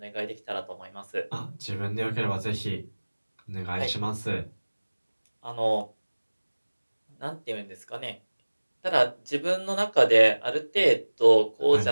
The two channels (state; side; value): inverted; both; correlation -1.00